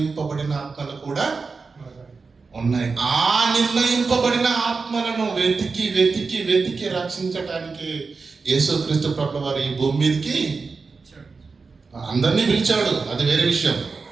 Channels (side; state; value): left; quieter; 4.5 dB